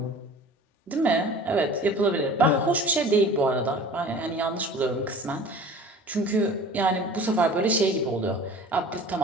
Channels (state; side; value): normal; both; correlation 0.42